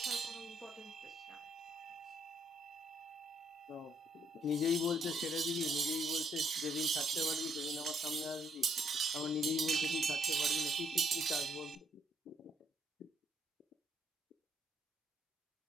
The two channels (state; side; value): normal; both; correlation 0.71